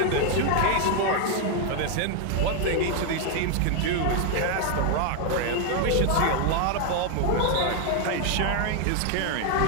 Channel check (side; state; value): both; different; correlation 0.01